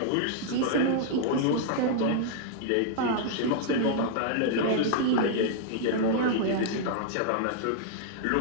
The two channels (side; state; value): both; different; correlation -0.01